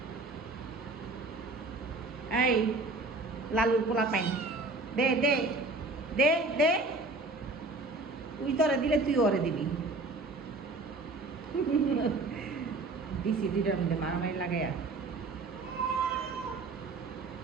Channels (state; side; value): quieter; left; 3.3 dB